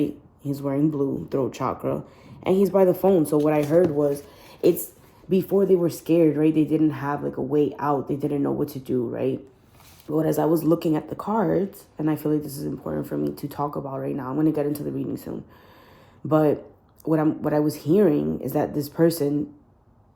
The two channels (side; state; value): both; identical; correlation 1.00